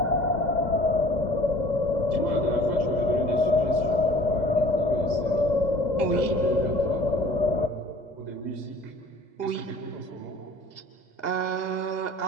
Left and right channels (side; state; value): right; late; 2.0 ms